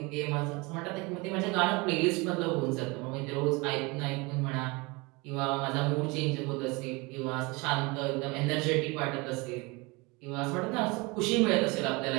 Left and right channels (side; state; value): left; quieter; 26.1 dB